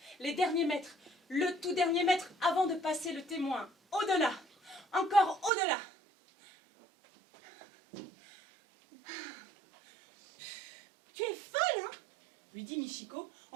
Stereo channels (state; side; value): drops out; left; at 5.5 s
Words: Les derniers mètres, le tout dernier mètre avant de passer le témoin. Au-delà, encore au-delà. Tu es folle, hein? Lui dit Michiko